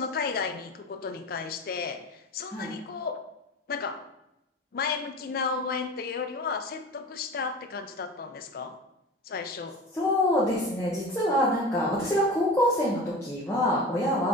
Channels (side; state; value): both; normal; correlation 0.33